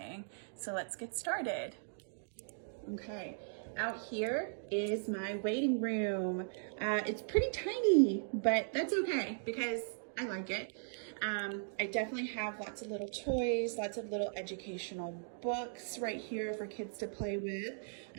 So let's get started. Okay, out here is my waiting room. It's pretty tiny, but that's okay because I like it. I definitely have lots of little toys, lots of little educational books right here for kids to play with.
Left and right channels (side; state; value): left; silent; digital silence